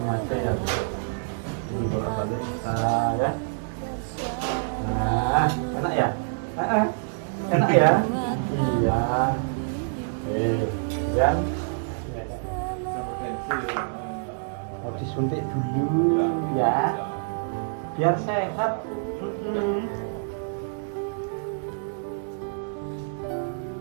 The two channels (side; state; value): left; silent; digital silence